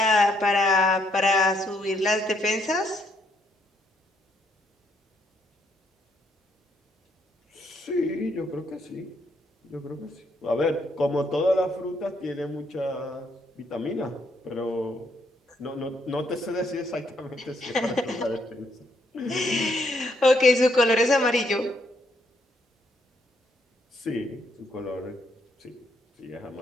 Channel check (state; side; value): normal; both; correlation 0.73